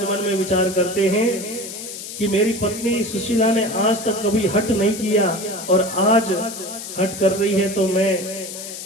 मन में विचार करते हैं कि मेरी पत्नी सुशीला ने आज तक कभी हट नहीं किया और आज हट कर रही है तो मैं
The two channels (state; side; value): noise; left; hiss, 10 dB below the sound